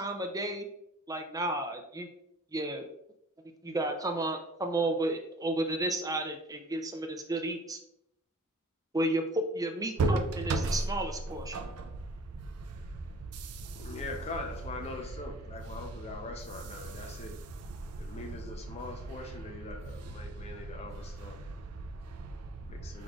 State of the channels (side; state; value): both; normal; correlation 0.48